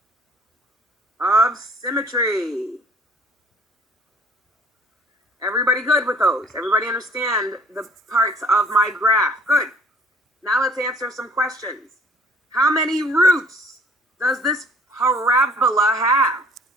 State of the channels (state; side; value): normal; both; correlation 0.55